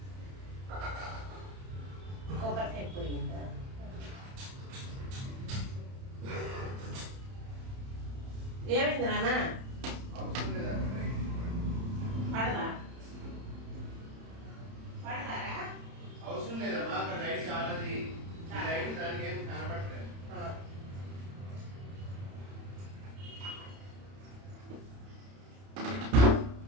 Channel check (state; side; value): late; left; 31 ms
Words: కొబ్బరికాయ పోయిందా? ఏమైంది నాన్న? పడదా? పడతారా? అవసరం లేదమ్మా, అక్కడ లైట్ చాలది. లైట్ దానికి ఏం కనపడలేదు.